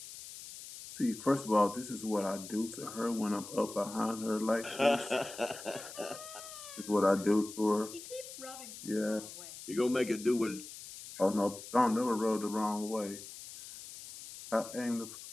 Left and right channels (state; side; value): noise; left; hiss, 13 dB below the sound